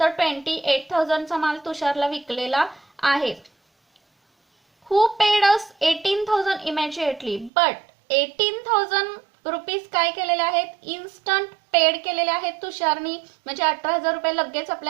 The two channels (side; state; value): left; drops out; at 7.5 s